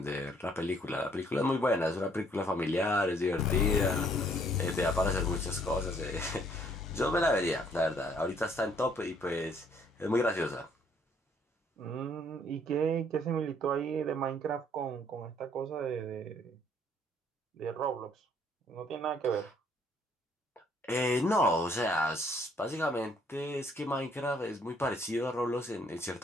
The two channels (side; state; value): both; normal; correlation 0.64